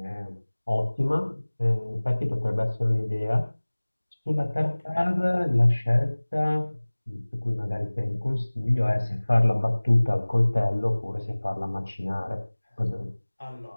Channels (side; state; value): both; inverted; correlation -1.00